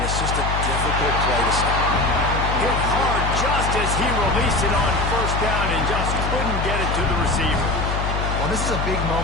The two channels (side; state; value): left; noise; hum, 2 dB below the sound